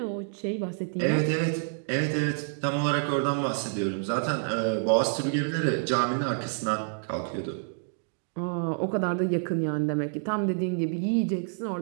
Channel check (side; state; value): left; silent; digital silence